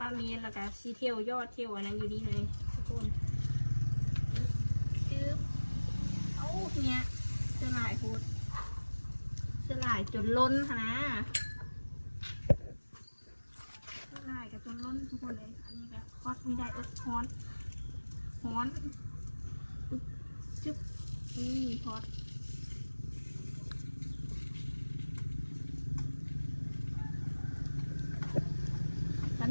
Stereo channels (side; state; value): both; inverted; correlation -1.00